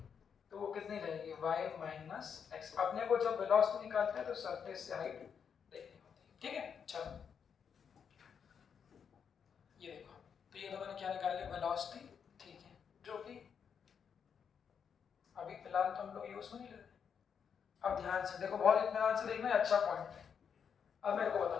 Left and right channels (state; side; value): quieter; right; 7.1 dB